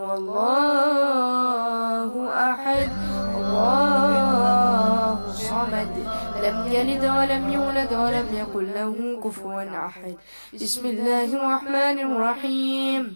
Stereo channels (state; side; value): inverted; both; correlation -1.00